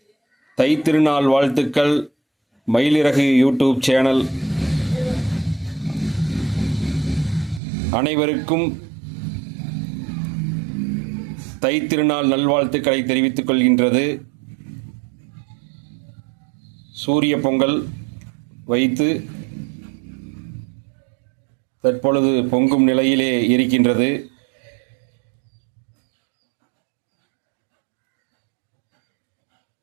தைத்திருநாள் வாழ்த்துக்கள். மயிலிறகு யூடியூப் சேனல் அனைவருக்கும் தைத்திருநாள் நல்வாழ்த்துக்களை தெரிவித்துக் கொள்கின்றது. சூரிய பொங்கல் வைத்து தற்பொழுது பொங்கும் நிலையிலே இருக்கின்றது.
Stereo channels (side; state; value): left; drops out; at 7.6 s